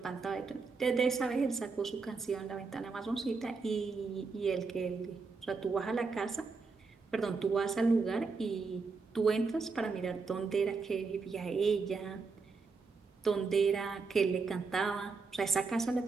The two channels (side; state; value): left; quieter; 4.5 dB